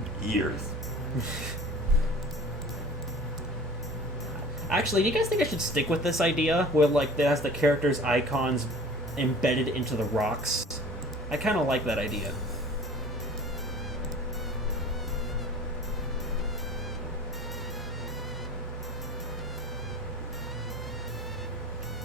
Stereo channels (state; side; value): normal; both; correlation 0.43